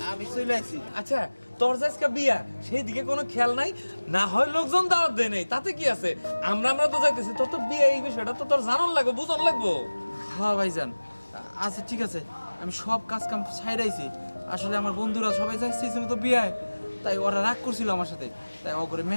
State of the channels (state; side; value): inverted; both; correlation -1.00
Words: আমি চলে আসছি। আচ্ছা, তোর যে আজকে বিয়া, সেই দিকে কোনো খেয়াল নাই? না হয় লোকজন দাওয়াত দেয় নাই, তাতে কি আছে? আমরা তো যাইতেছি, তোর তো বিয়ে, এই বিষয়টা তো তোর জানান লাগবে, বুঝন লাগবো। হ্যাঁ ভাইজান, আচ্ছা ঠিক আছে, আমি সব কাজ কাম ছাইড়াইছি। আসলে আমার বন্ধুরা সবাই যাইছিল তো বিয়ায়, তাই ওরা রাগ করছিল আমার সাথে, তাই ও করে